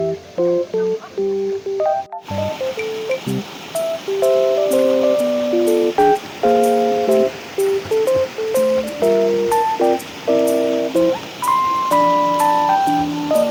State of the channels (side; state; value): both; identical; correlation 1.00